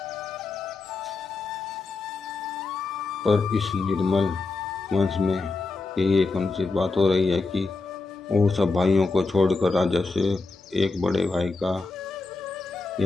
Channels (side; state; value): right; quieter; 3.8 dB